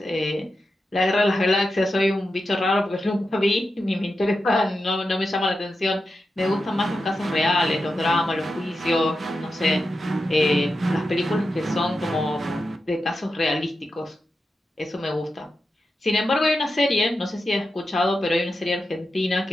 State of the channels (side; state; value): both; normal; correlation 0.90